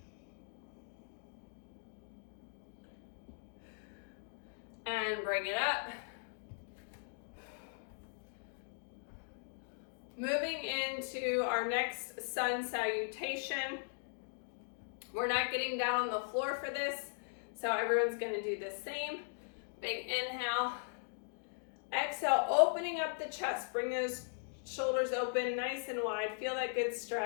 And bring it up. Moving into our next sun salutation. We're not getting down on the floor for this, so everyone's going to do the same. Big inhale. Exhale, opening up the chest. Bring those shoulders open nice and wide. Feel that good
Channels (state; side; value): silent; right; digital silence